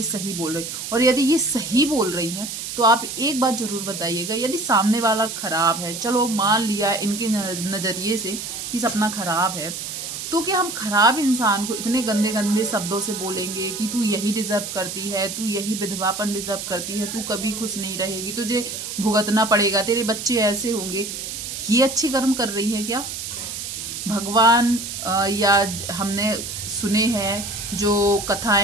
सही बोल रही। और यदि ये सही बोल रही हैं तो आप एक बात ज़रूर बताइएगा, यदि सामने वाला ख़राब है, चलो मान लिया इनके नज़रिए से कि सपना ख़राब है, तो क्या हम खराब इंसान को इतने गंदे गंदे शब्दों से बोलेंगे कि तू यही डिजर्व करती है, तू यही विधवापन डिजर्व करती है, तू कभी खुश नहीं रहेगी, तुझे भुगतना पड़ेगा, तेरे बच्चे ऐसे होंगे। ये अच्छे कर्म कर रही है क्या? भगवान या हमने सुने हैं जो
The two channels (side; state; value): right; noise; hiss, 7 dB below the sound